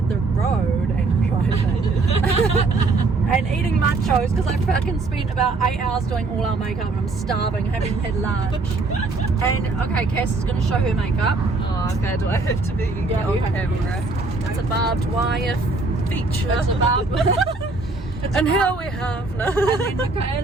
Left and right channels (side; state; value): left; quieter; 3.5 dB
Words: the road and driving. And eating nachos because I fucking spent about 8 hours doing all our makeup and I'm starving, haven't had lunch. And okay, Cass is going to show her makeup. Oh, okay. Do I have to be on camera? It's a barbed wire feature. It's a barbed wire. And here we have and then